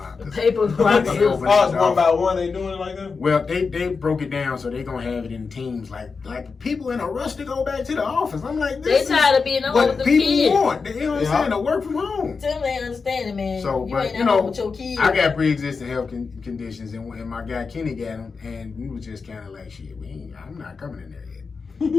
the papers They rocking. opened Oh, it's the one by office. one. They doing it like that? Well, they broke it down so they gonna have it in teams, like people in a rush to go back to the office. I'm like, They this tired is of being alone what with the people kids. want. You know what I'm saying? To work from home. Tim ain't understanding, man. So, you but ain't you at home know, with your kids. I got pre-existing health conditions, and my guy Kenny got them, and we was just kind of like, shit, I'm not coming in there yet. You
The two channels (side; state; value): right; quieter; 4.9 dB